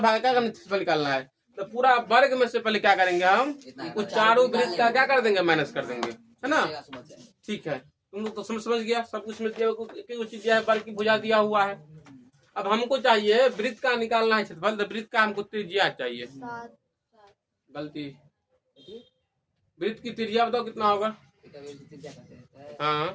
भाग का निकालना है। तो पूरा वर्ग में से पहले क्या करेंगे हम? वो चारों वृत्त का क्या कर देंगे? माइनस कर देंगे, है ना। ठीक है, तुम लोग तो समझ गया, सब कुछ में चीज दिया है, वर्ग की भुजा दिया हुआ है। अब हमको चाहिए वृत्त का निकालना है क्षेत्रफल। तो वृत्त का हमको त्रिज्या चाहिए। गलती, वृत्त की त्रिज्या बताओ कितना होगा?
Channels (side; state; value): both; identical; correlation 1.00